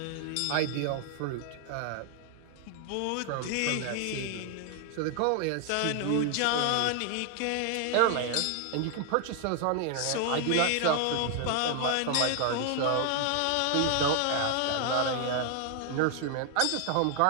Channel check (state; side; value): different; both; correlation 0.00